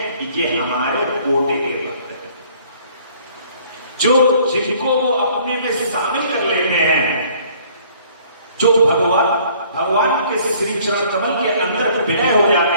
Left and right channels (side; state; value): both; inverted; correlation -0.57